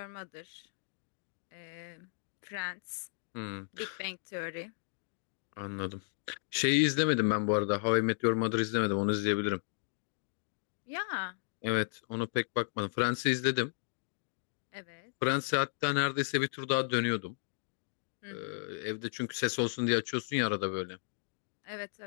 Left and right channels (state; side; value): silent; right; digital silence